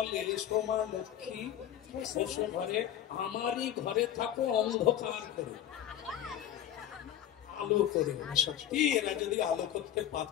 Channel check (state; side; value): quieter; right; 11.0 dB